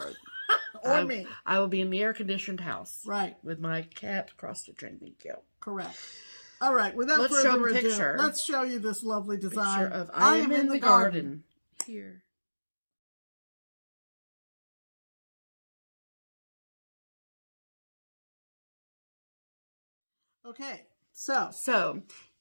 Or me. I will be in the air-conditioned house. Right. With my cat cross-stitching. Thank you. Correct. All right. Without further ado, let's show you this lovely design. Picture of I am in the garden. Here. Okay, So,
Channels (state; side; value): inverted; both; correlation -1.00